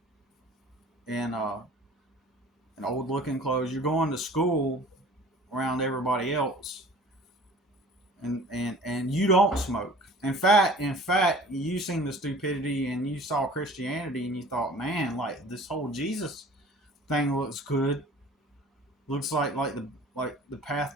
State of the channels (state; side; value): normal; both; correlation 0.46